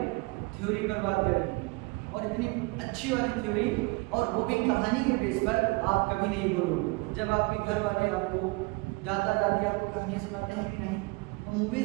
थ्योरी पर बात करेंगे। और इतनी अच्छी वाली थ्योरी, और वो भी कहानी के बेस पर, आप कभी नहीं बोलोगे। जब आपके घर वाले आपको, दादा दादी आपको कहानियाँ सुनाते हैं कि नहीं? और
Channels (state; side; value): quieter; left; 26.7 dB